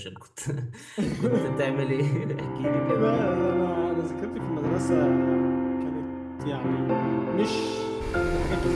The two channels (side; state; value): both; identical; correlation 1.00